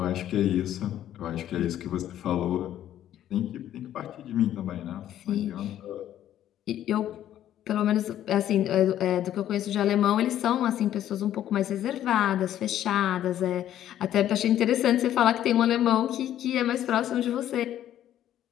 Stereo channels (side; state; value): right; quieter; 11.7 dB